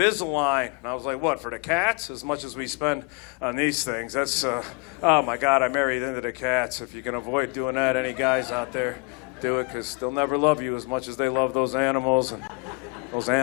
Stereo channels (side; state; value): right; quieter; 30.6 dB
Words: And I was like, what, for the cats? As much as we spend on these things. That's, oh my God, I married into the cats. If you can avoid doing that, any guys out there, do it, because they'll never love you as much as they love those animals. And those